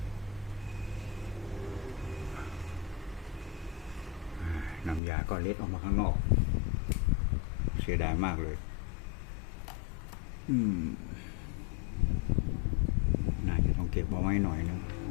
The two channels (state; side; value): drops out; right; at 5.0 s